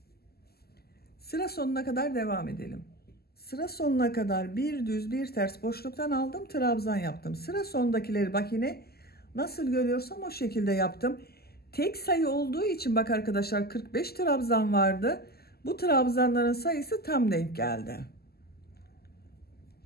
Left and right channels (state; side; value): late; right; 0.46 ms